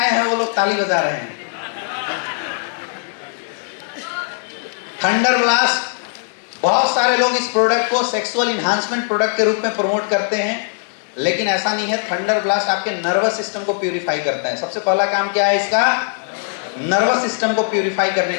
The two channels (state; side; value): silent; right; digital silence